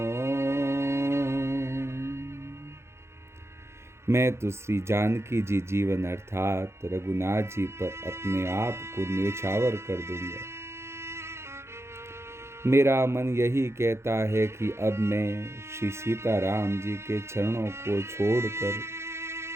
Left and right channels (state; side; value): late; left; 0.13 ms